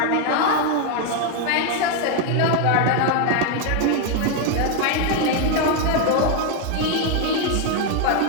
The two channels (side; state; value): both; different; correlation 0.01